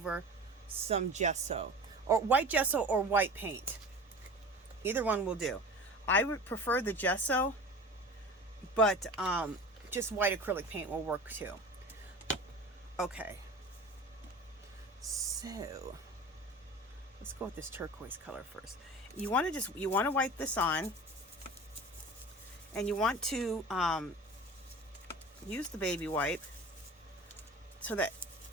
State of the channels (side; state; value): both; normal; correlation 0.36